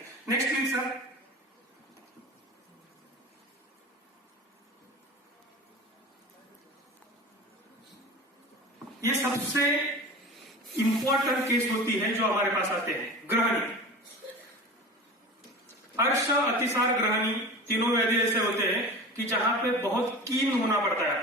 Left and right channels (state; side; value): normal; both; correlation 0.34